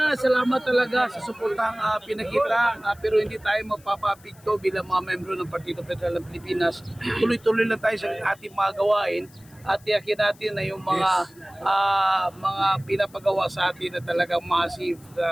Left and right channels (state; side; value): noise; left; hiss, 27 dB below the sound